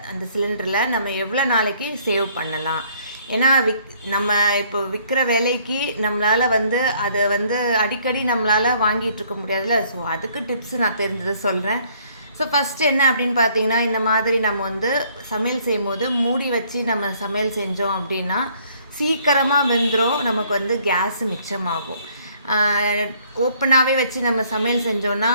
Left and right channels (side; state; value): both; inverted; correlation -0.62